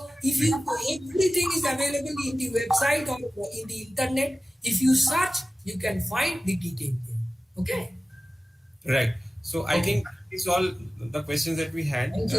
if everything is available in the website or in the internet, if you search, you can find the detail there. Okay. Right. So I think it's all the questions that we had.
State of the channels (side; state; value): both; normal; correlation 0.96